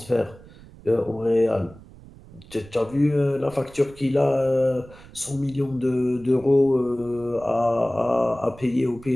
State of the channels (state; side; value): noise; right; rumble, 21 dB below the sound